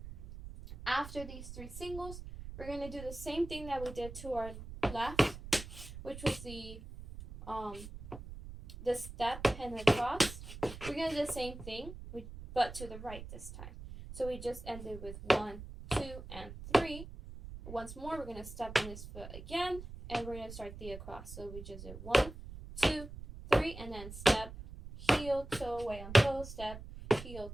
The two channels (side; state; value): right; noise; rumble, 12 dB below the sound